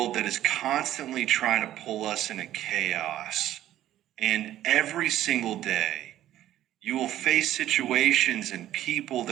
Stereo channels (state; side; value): quieter; left; 13.0 dB